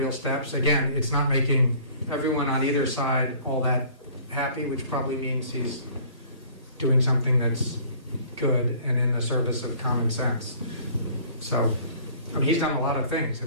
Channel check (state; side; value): inverted; both; correlation -0.52